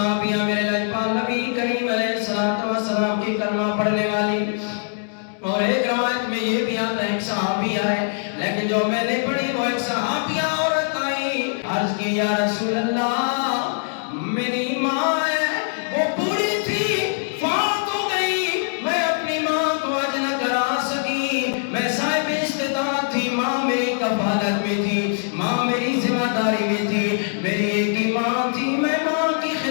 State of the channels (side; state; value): right; silent; digital silence